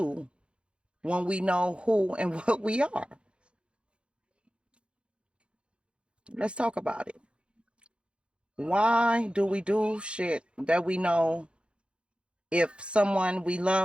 when we know who and what we are. Let's talk about it. Why do we do shit that we know if someone we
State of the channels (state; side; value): late; left; 0.057 ms